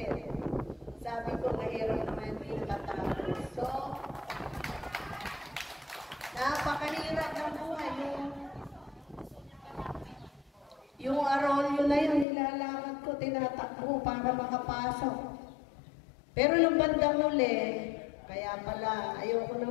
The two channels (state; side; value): drops out; right; at 12.2 s